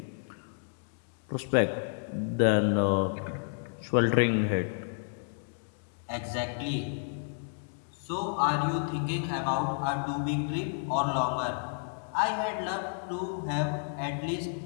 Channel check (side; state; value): right; silent; digital silence